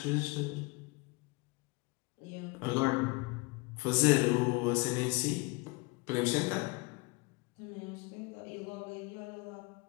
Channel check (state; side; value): quieter; right; 25.9 dB